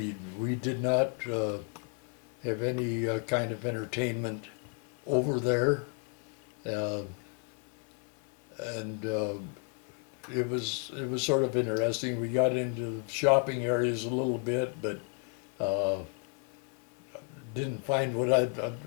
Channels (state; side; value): quieter; right; 35.9 dB